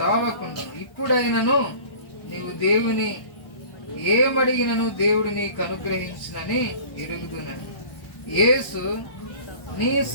ఇప్పుడైనను నీవు దేవుని ఏమడిగినను దేవుడు నీకు అనుగ్రహించునని ఎరుగుదునని. యేసు, నీ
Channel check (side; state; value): right; late; 1.1 ms